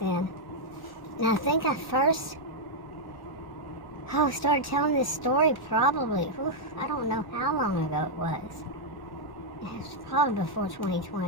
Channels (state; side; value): late; right; 1.1 ms